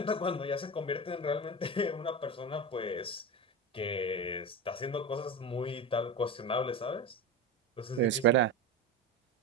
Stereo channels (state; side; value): normal; both; correlation 0.23